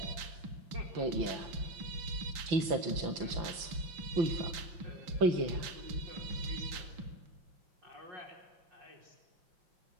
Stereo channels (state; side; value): late; left; 5.9 ms